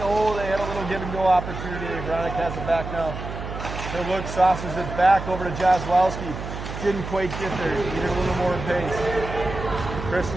Oh, they had a little give and go opportunity. Veronica has it back now. He'll look, saucers it back over to Jozwowski. Didn't quite get there. Needed a little more pace.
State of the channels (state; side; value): noise; right; hum, 8 dB below the sound